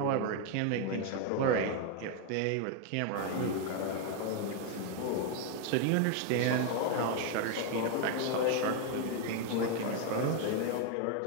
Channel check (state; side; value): different; both; correlation 0.01